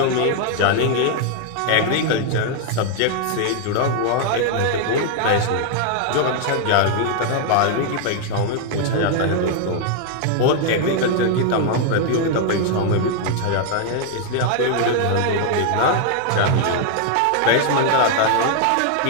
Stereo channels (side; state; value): both; different; correlation 0.00